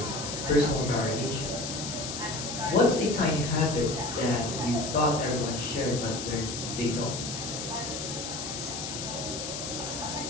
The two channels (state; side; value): noise; left; hiss, 6 dB below the sound